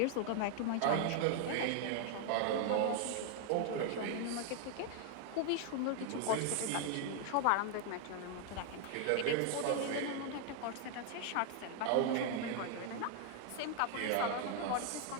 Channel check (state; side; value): different; both; correlation 0.00